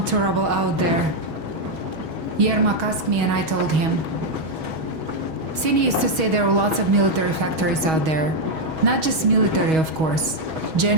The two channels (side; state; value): left; late; 6.3 ms